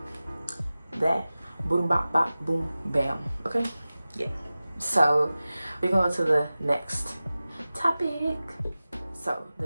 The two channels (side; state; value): both; inverted; correlation -0.96